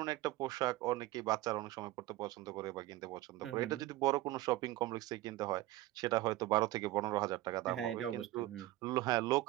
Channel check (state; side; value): quieter; left; 16.7 dB